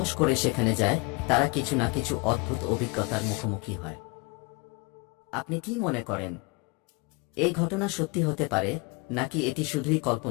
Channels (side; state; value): right; quieter; 28.5 dB